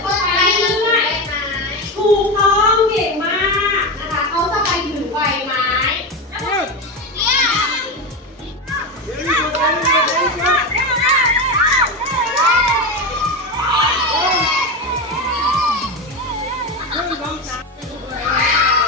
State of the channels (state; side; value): normal; both; correlation 0.17